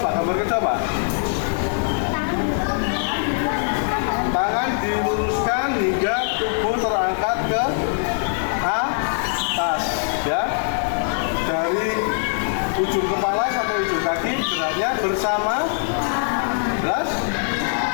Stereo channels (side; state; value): right; silent; digital silence